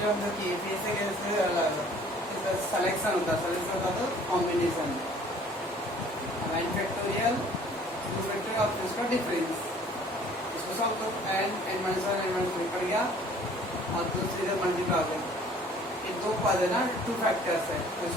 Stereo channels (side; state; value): both; normal; correlation 0.54